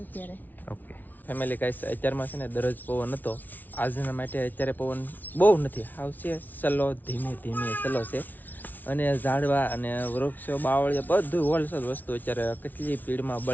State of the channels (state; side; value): late; right; 0.082 ms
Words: અત્યારે. ઓકે ફેમિલી ગાઈસ, અત્યારમાં છે ને દરરોજ પવન હતો. આજના માટે અત્યારે પવન બહુ નથી, આવશે સલો ધીમે સલો છે. અને ઝાડવા અને વૃક્ષો બાવળિયા બધું હોલસેલ વસ્તુ અત્યારે કેટલી સ્પીડમાં